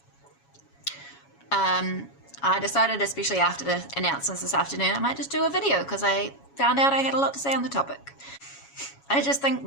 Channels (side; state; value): right; late; 7.2 ms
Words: I decided, especially after the announcements this afternoon, I might just do a video because I found out I had a lot to say on the topic. I just think